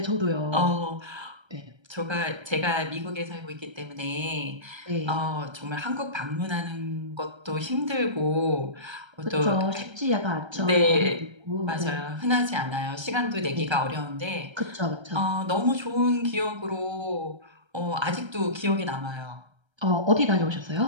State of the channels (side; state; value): left; late; 1.3 ms